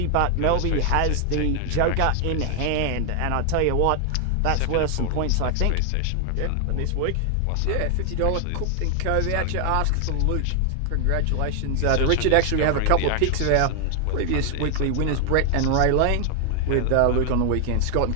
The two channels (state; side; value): different; both; correlation 0.00